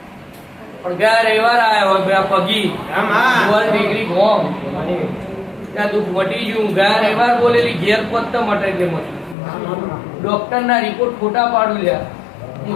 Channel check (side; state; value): right; drops out; at 9.3 s